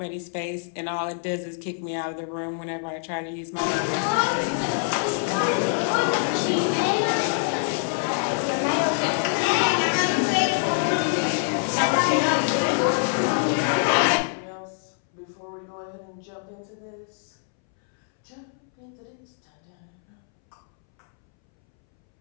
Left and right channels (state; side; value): silent; right; 62 dB below the other